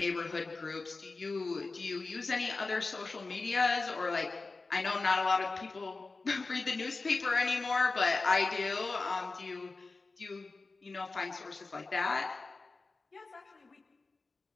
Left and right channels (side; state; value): right; quieter; 3.7 dB